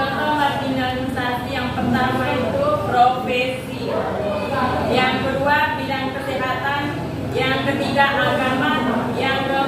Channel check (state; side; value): identical; both; correlation 1.00